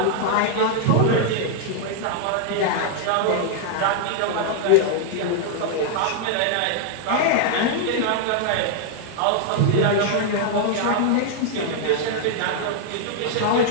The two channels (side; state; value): both; different; correlation 0.00